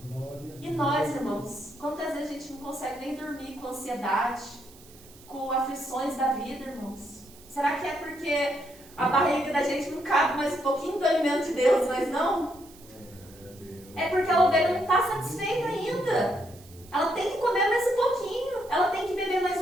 E nós, irmãos, quantas vezes a gente não consegue nem dormir com ansiedade, com aflições da vida, irmãos? Será que é porque a barriga da gente não cabe mais um pouquinho do alimento de Deus, mas não? É porque a ovelha não está satisfeita ainda. Ela tem que comer mais um pouquinho. Ela tem que beber mais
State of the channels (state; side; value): noise; right; hiss, 23 dB below the sound